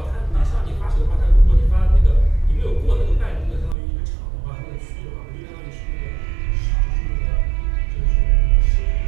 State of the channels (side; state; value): left; drops out; at 3.8 s